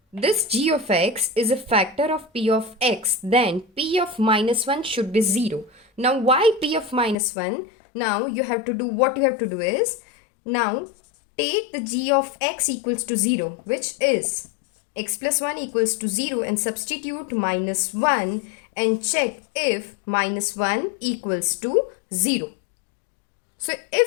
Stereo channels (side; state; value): right; drops out; at 7.2 s